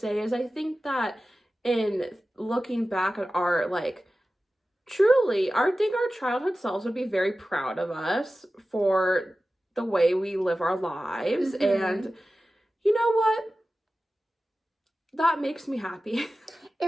is I think that in looking back at our, like, truly, I think our childhood selves would be very proud of us for the way we live our lives. Mm-hmm. And you know what? That makes me happy.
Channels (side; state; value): both; normal; correlation 0.95